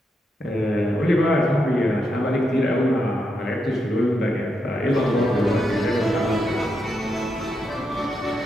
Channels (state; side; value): normal; both; correlation 0.83